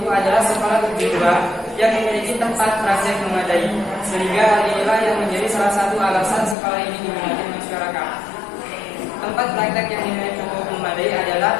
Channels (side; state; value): right; drops out; at 6.6 s